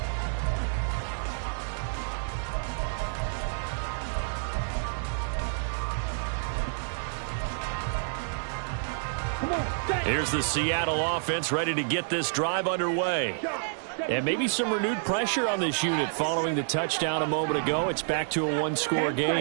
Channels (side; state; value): left; silent; digital silence